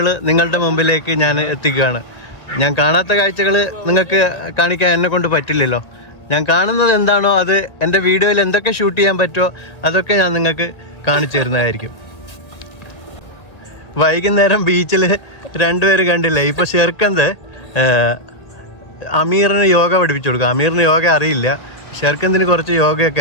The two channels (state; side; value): late; right; 1.8 ms